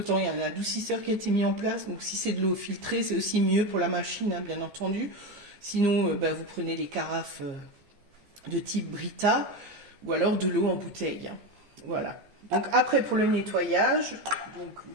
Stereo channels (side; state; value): left; late; 15 ms